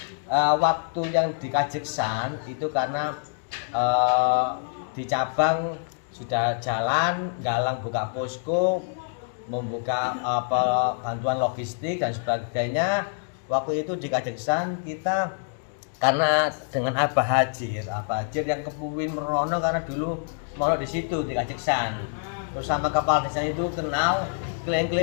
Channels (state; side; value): silent; right; digital silence